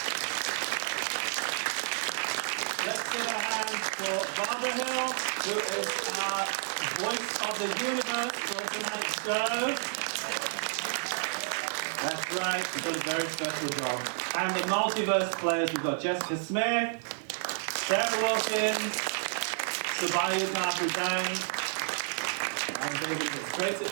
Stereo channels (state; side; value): silent; left; digital silence